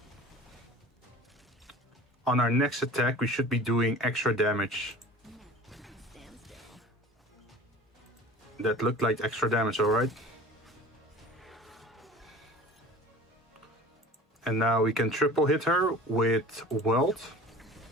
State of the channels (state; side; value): normal; both; correlation 0.41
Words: on our next attack we should be doing extra damage. That looked like extra damage, alright? And now we can triple hit her with Weld.